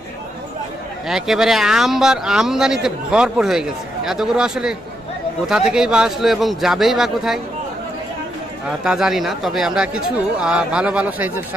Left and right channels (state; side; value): normal; both; correlation 0.80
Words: একেবারে আমদানিতে ভরপুর হয়ে গেছে। এতগুলো আসলে কোথা থেকেই বা আসলো এবং যাবেই বা কোথায় তা জানি না। তবে আমরা কিছু ভালো ভালো সাইজের